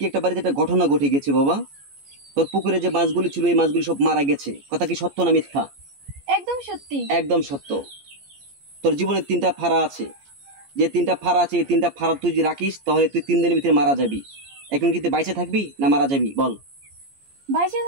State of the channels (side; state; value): left; late; 14 ms